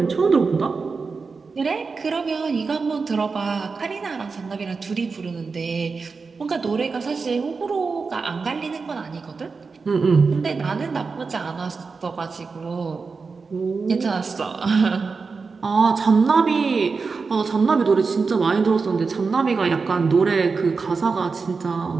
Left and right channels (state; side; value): quieter; left; 4.7 dB